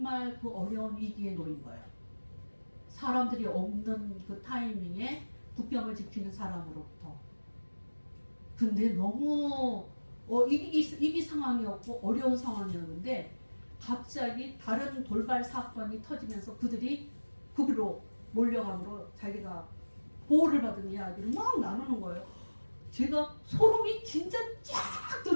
그 어려운 위기에 놓인 거예요. 사람들이 없는 그 타이밍에 국경을 지키는 사람으로부터. 근데 너무 위기 상황이었고 어려운 상황이었는데 갑자기 다른 돌발 사건이 터지면서 그들이 거기로 몰려감으로 자기가 보호를 받은 이야기를 막 나누는 거예요. 제가 소름이 진짜 쫙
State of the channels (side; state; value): both; inverted; correlation -1.00